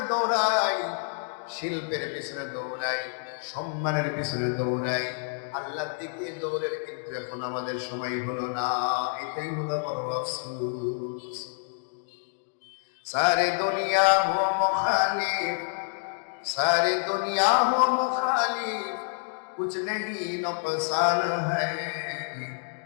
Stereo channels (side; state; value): right; silent; digital silence